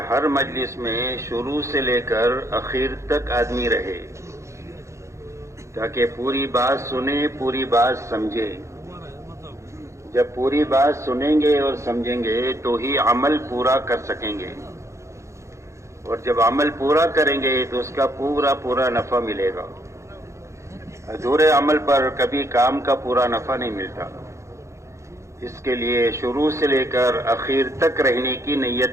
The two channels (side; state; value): left; late; 0.14 ms